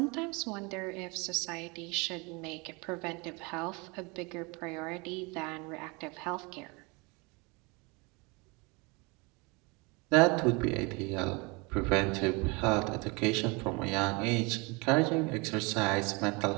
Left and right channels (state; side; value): quieter; left; 27.9 dB